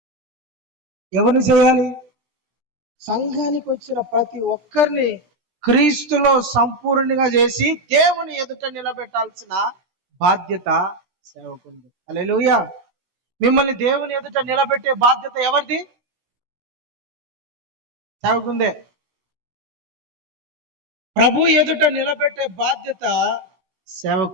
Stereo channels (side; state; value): left; late; 17 ms